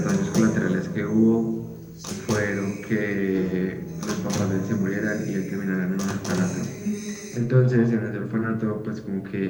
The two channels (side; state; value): both; identical; correlation 1.00